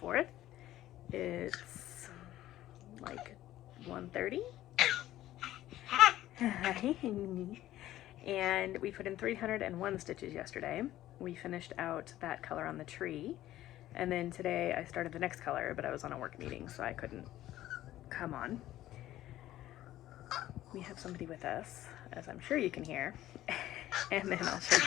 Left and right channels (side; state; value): right; quieter; 14.2 dB